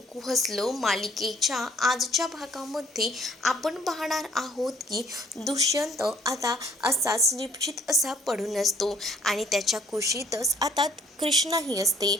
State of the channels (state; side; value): normal; both; correlation 0.60